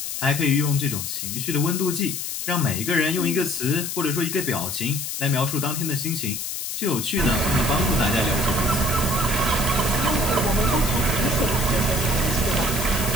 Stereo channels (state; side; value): noise; left; hiss, 4 dB below the sound